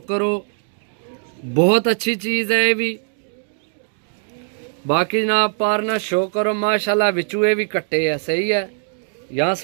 करो बहुत अच्छी चीज़ है ये भी। बाकी जनाब पारना शो करो माशाल्लाह। बिचू ये भी कट्टे है सही है। यहाँ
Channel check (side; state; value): left; silent; 55 dB below the other